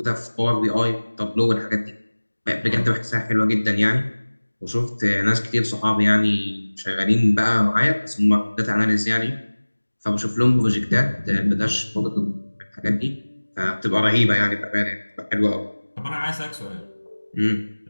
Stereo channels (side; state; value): both; inverted; correlation -1.00